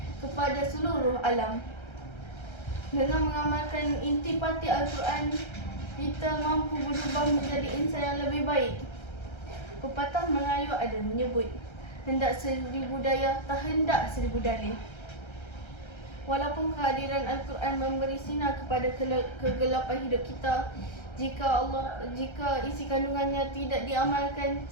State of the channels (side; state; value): right; late; 1.3 ms